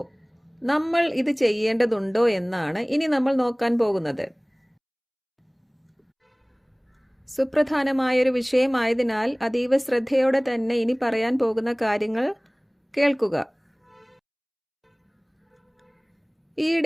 നമ്മൾ ഇത് ചെയ്യേണ്ടതുണ്ടോ എന്നാണ് ഇനി നമ്മൾ നോക്കാൻ പോകുന്നത്. സുപ്രധാനമായൊരു വിഷയമായതിനാൽ അതീവ ശ്രദ്ധയോടെ തന്നെ ഇനി പറയാൻ പോകുന്ന കാര്യങ്ങൾ കേൾക്കുക.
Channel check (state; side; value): identical; both; correlation 1.00